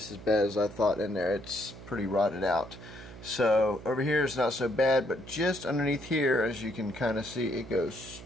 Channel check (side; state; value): right; noise; hum, 15 dB below the sound